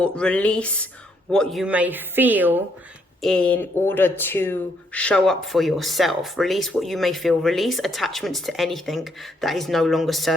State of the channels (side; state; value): both; normal; correlation 0.72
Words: release what you may feel in order to show up for yourself. Release what you may feel. Release attachments to anything that is no longer